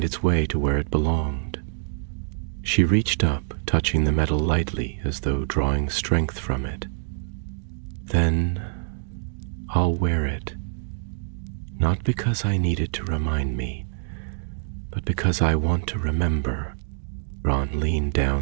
its way to where it belonged." She reached up, touching the metal lightly as though drawing strength from it. "Then I'll wear it, not because I need it to remind me, but because I want to remember." Ron leaned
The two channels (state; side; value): silent; left; digital silence